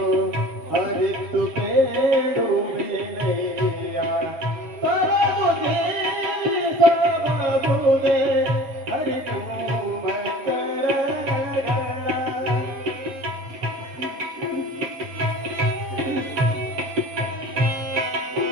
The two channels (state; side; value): late; left; 7.6 ms